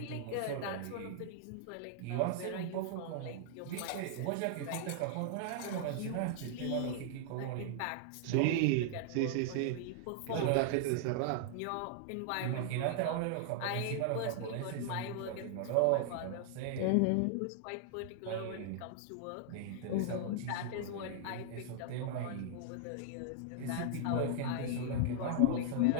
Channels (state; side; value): different; both; correlation -0.01